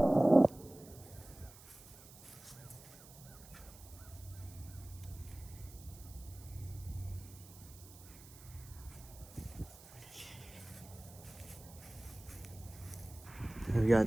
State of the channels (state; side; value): noise; right; hiss, 19 dB below the sound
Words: Here we got